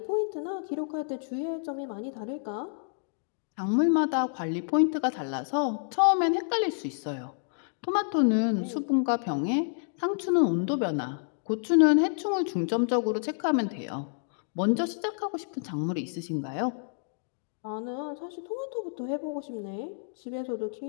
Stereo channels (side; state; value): right; silent; digital silence